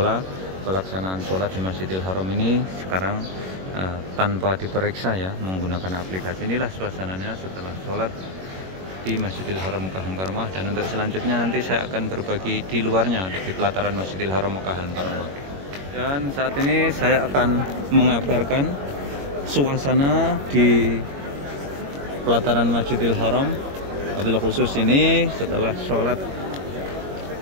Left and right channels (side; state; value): left; late; 21 ms